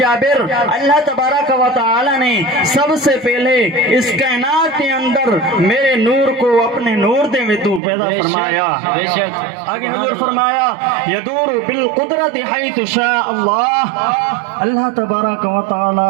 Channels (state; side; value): drops out; left; at 7.8 s